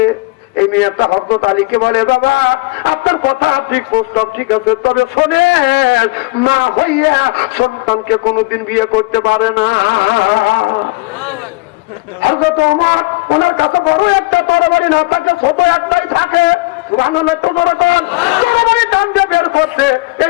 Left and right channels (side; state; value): right; quieter; 23.6 dB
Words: এই মেয়েটা হযরত আলীকে বলে, বাবা আপনার কথা ঠিক, প্রস্তাব ঠিক আছে, তবে শোনেন, মা হইয়া সন্তানকে কোনোদিন বিয়ে করতে পারে না। হযরত ওমর, ওনার কাছে বড় একটা তরবারি না থাকে, ছোট একটাই থাকে। সুবহানাল্লাহ, তো বড় কান তরবারি টান দিয়ে বের করছে।